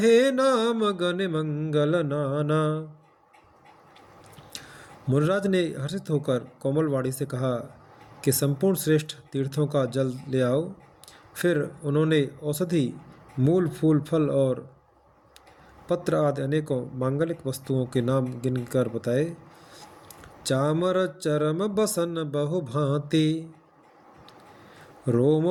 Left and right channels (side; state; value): both; identical; correlation 1.00